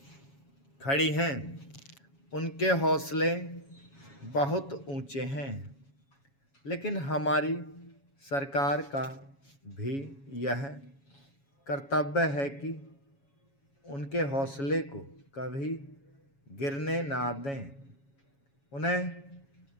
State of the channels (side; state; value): right; late; 7.2 ms